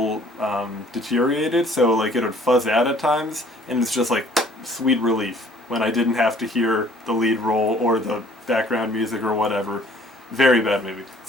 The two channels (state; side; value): normal; both; correlation 0.56